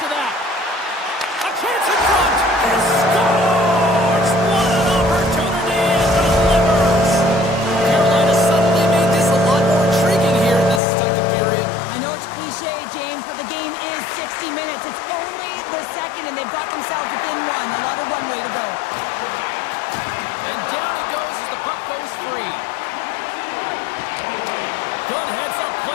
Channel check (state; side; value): drops out; right; at 10.8 s